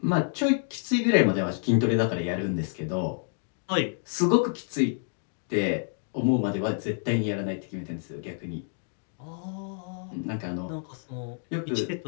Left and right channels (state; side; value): silent; right; 59 dB below the other